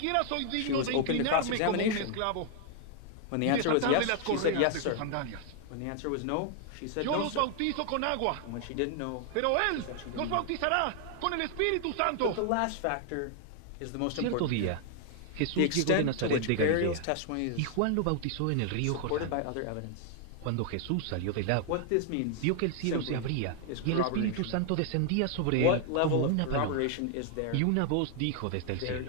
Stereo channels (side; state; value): both; different; correlation 0.00